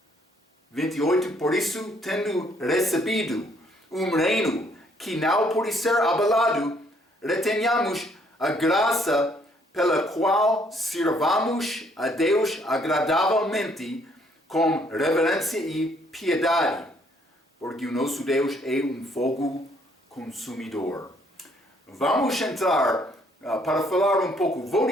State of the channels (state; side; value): normal; both; correlation 0.66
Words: 28. Por isso, tendo recebido um reino que não pode ser abalado, retenhamos a graça pela qual sirvamos a Deus agradavelmente com reverência e piedade, porque o nosso Deus é um fogo consumidor. Vamos entrar para falar um pouco, vou